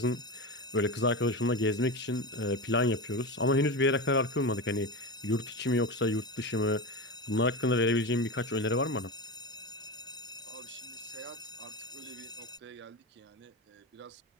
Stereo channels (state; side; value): normal; both; correlation 0.22